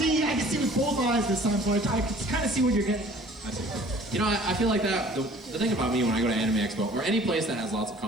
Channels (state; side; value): normal; both; correlation 0.51